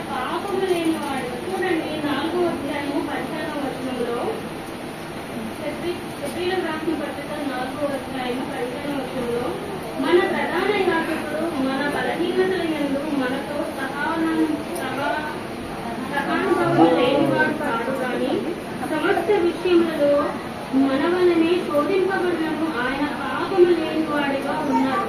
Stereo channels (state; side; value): identical; both; correlation 1.00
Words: పాపము లేని వాడు. చూడండి, 4వ అధ్యాయము 15వ వచనంలో, హెబ్రీయులకు రాసిన పత్రిక 4వ అధ్యాయము 15వ వచనంలో, మన ప్రధాన యాజకుడు మన బలహీనతల యందు మనతో సహానుభవం లేనివాడు కాడు కానీ సమస్త విషయములలో మన వలనే శోధింపబడినను ఆయన పాపము లేని వాడిగా ఉన్నాడు.